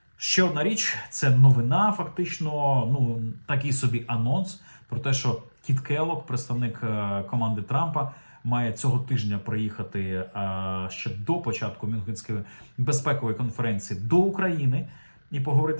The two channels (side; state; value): both; inverted; correlation -1.00